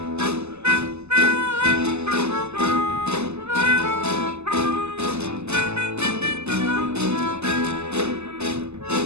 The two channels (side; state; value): left; late; 0.80 ms